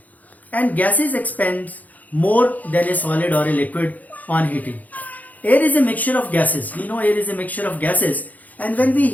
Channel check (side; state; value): right; late; 0.079 ms